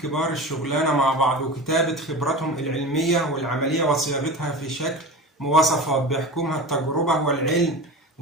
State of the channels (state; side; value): normal; both; correlation 0.31